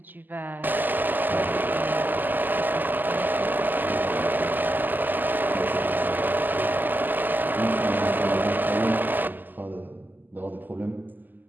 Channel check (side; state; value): left; late; 0.087 ms